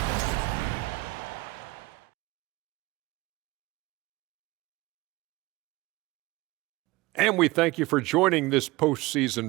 And we thank you for joining this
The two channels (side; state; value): left; quieter; 20.9 dB